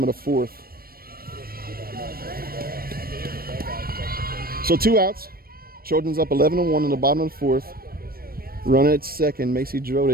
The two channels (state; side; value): late; left; 0.44 ms